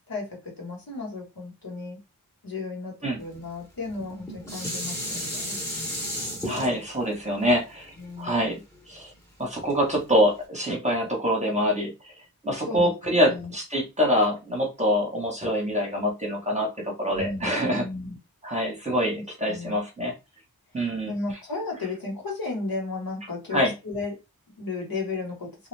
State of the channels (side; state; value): both; normal; correlation 0.26